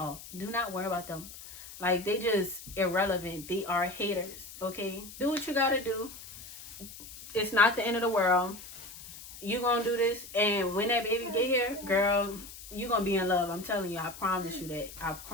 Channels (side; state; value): left; noise; hiss, 15 dB below the sound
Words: Do not worry about them. Like, they just irrelevant. They are haters. Okay? Do what you gotta do. It's not the end of the world. You gonna do this, and when that baby get here, girl, you gonna be in love. I'm telling you. I promise you that. I